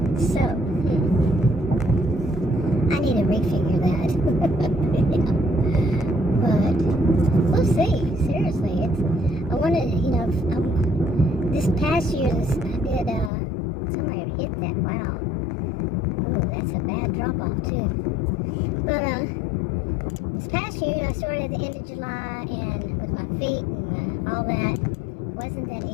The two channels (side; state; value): right; drops out; at 13.3 s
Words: So, I need to refigure that. Yeah. But we'll see. Seriously, I want to, this past year, I did, somebody hit that, wow. Ooh, that's a bad drop-off, too. But, this past year, I started at the end of July, and with my feet and all that, it wasn't that